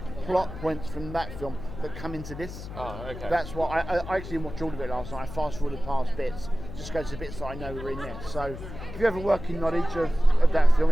plot points from that film that come into this. Oh, okay. That's why I actually watched all of it last night. I fast forwarded past bits, just go to the bits that I know were in there. So if you have a working knowledge of that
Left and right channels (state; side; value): noise; left; hum, 11 dB below the sound